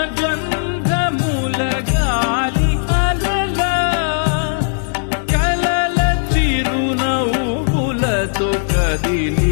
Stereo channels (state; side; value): silent; right; digital silence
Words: గాలి అలల కలల చిరునవ్వులతో